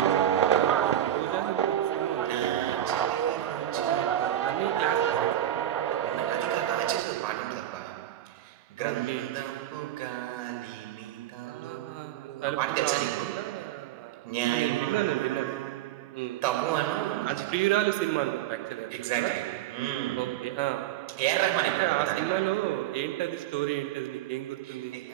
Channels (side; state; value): left; quieter; 12.4 dB